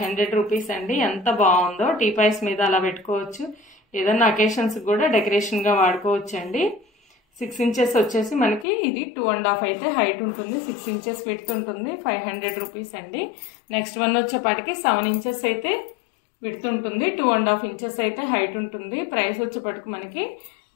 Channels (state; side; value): drops out; right; at 8.7 s